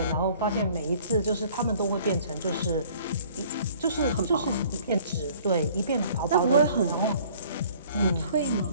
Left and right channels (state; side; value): inverted; both; correlation -0.54